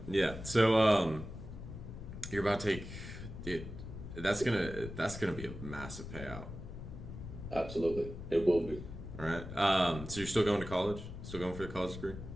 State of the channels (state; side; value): noise; left; rumble, 10 dB below the sound